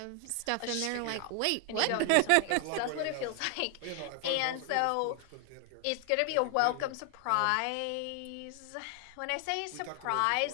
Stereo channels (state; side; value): different; both; correlation 0.00